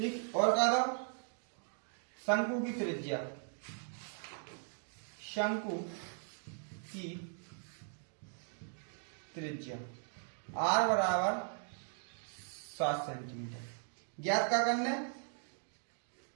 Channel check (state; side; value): silent; left; 52 dB below the other